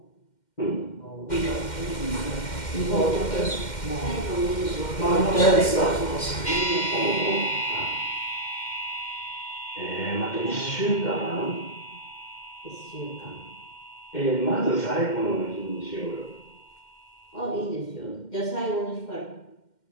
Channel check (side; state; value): right; late; 2.1 ms